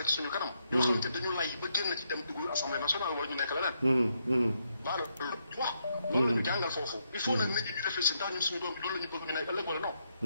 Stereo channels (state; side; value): inverted; both; correlation -0.78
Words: ci suñu kanam. yoo xamante dañu lay ba génn ci dem dugg assemblée nationale wala ñu nekk leneen. baalo loolu wax loolu la ñu jàngal foofu. il faut nag nit ñi ñu réfléchir ndax ñun suñu doom bi loolu la ñu bëgg ñu nekk ëllëg wala non.